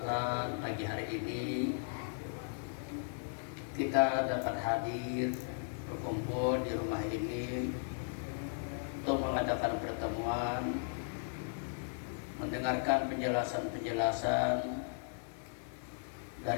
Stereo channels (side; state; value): right; silent; digital silence